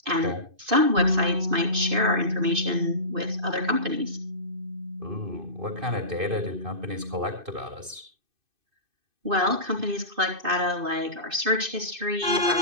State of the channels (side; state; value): left; late; 2.5 ms